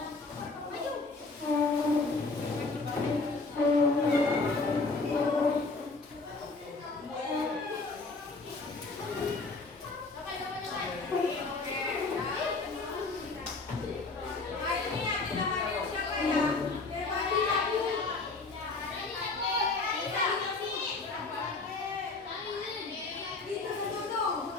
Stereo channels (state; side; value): quieter; right; 3.7 dB